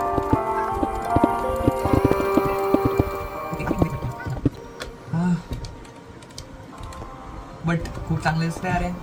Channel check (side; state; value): both; identical; correlation 1.00